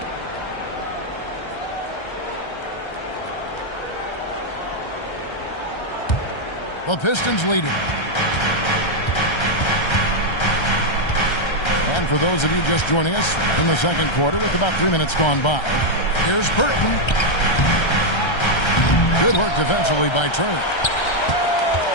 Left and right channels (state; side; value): late; right; 1.3 ms